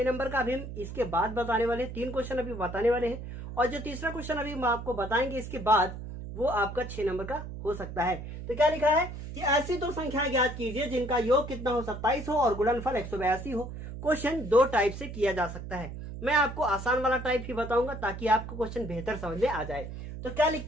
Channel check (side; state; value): right; noise; hum, 9 dB below the sound